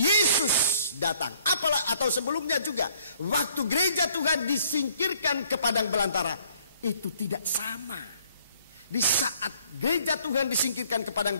Yesus datang, apalah atau sebelumnya juga, waktu gereja Tuhan disingkirkan ke Padang Belantara, itu tidak sama. Di saat gereja Tuhan disingkirkan ke Padang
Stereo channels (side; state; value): both; inverted; correlation -0.62